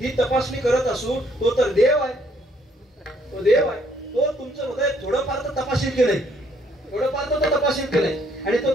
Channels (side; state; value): both; normal; correlation 0.67